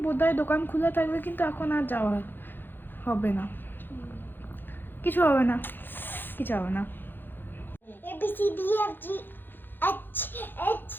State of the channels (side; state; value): right; late; 0.097 ms